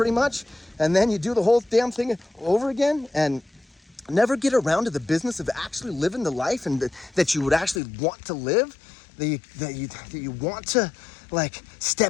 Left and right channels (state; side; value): drops out; right; at 7.8 s